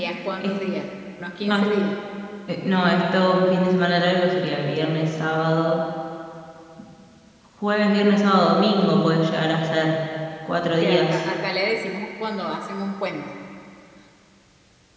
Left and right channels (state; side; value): identical; both; correlation 1.00